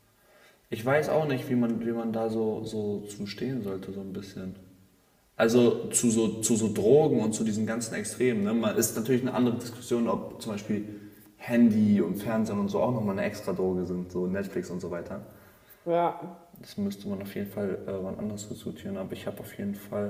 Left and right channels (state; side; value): identical; both; correlation 1.00